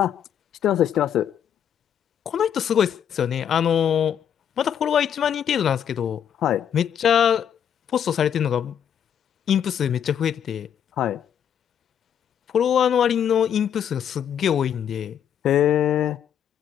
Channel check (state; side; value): quieter; right; 9.0 dB